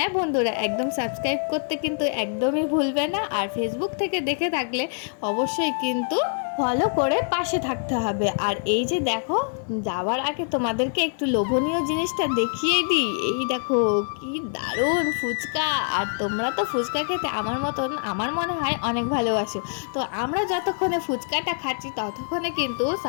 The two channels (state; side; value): silent; right; 62 dB below the other